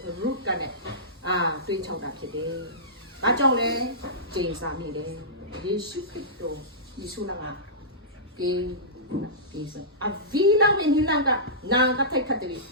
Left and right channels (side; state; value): both; normal; correlation -0.19